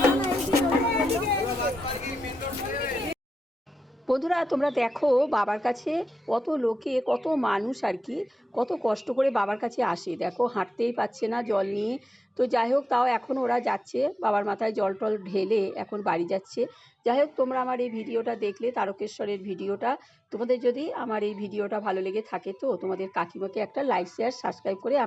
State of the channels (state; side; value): normal; both; correlation 0.91